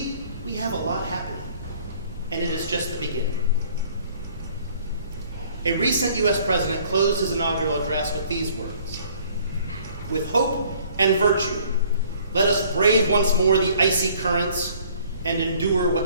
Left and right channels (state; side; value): inverted; both; correlation -0.57